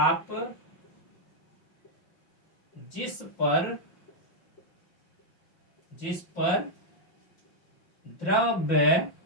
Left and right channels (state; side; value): late; right; 5.7 ms